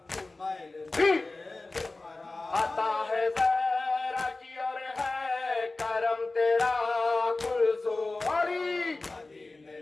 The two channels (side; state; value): right; quieter; 3.2 dB